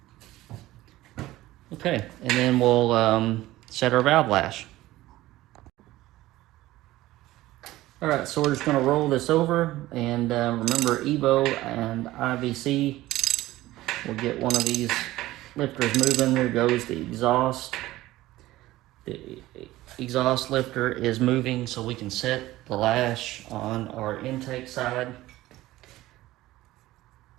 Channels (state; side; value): quieter; left; 16.7 dB